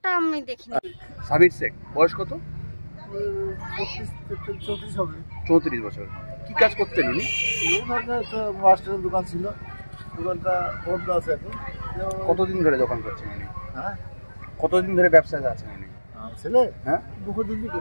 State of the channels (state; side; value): inverted; both; correlation -1.00